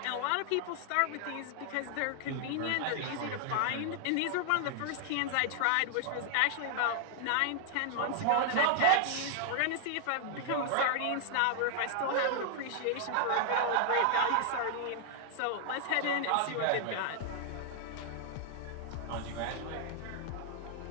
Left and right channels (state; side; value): different; both; correlation -0.01